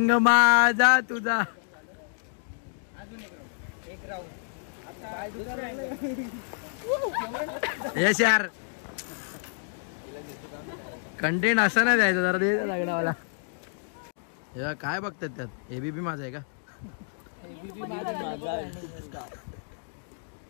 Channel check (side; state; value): right; silent; digital silence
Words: माझा तुझा. यस यार कंटेंट असं नाही द्यायचं जरा. दे लागणावाला. काय बघतात त्यात. एबीपी माझा आहे का.